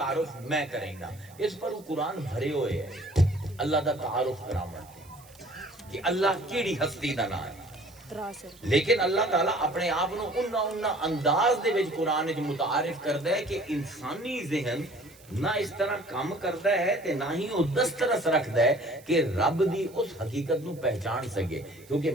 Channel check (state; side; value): noise; right; hiss, 25 dB below the sound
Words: میں کریں گا. اس پر وہ قرآن بھرے ہوئے ہیں اللہ دا تعارف کرامن کہ اللہ کیڑی ہستی دا نام ہے. لیکن اللہ تعالیٰ اپنے آپ نو انہا انداز دے وچ قرآن وچ متعارف کردا ہے کہ انسانی ذہن نہ اس طرح کام کردا ہے تے نہ ہی وہ دسترس رکھدا ہے کہ رب دی اس حقیقت نو پہچان سکے. کیونکہ